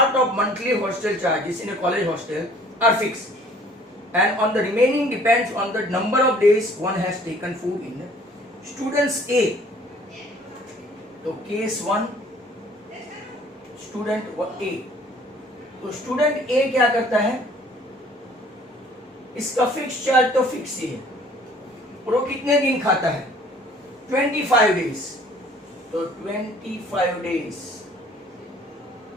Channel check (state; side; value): normal; both; correlation 0.55